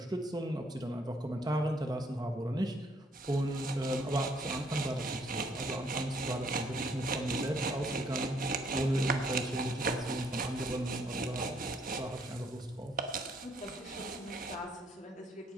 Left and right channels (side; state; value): both; normal; correlation 0.67